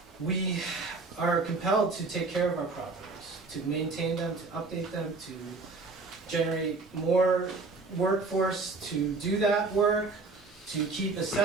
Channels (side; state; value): left; quieter; 3.8 dB